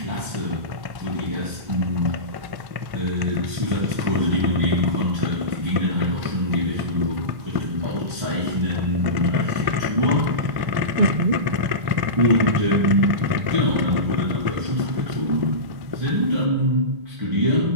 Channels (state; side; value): late; left; 1.1 ms